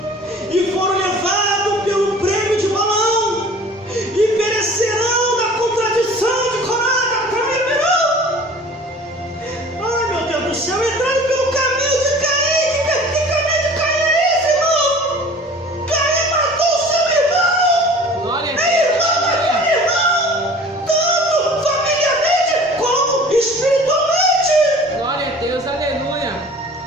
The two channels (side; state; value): both; normal; correlation 0.45